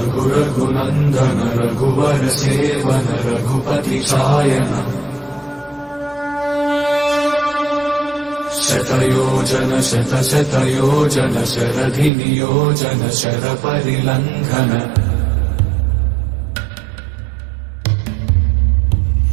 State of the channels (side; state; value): left; drops out; at 12.1 s